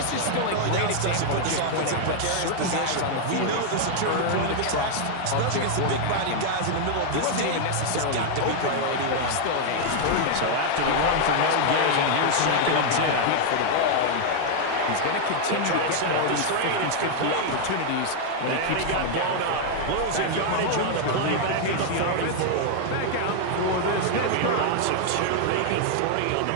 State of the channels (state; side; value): different; both; correlation 0.00